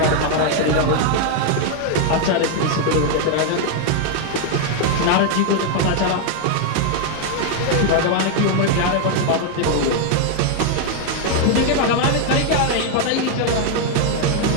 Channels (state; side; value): different; both; correlation 0.00